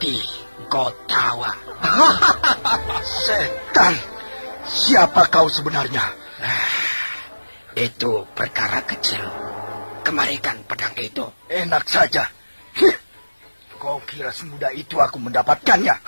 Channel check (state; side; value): inverted; both; correlation -1.00